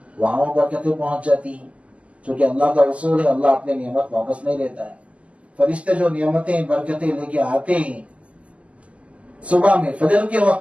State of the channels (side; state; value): left; late; 0.063 ms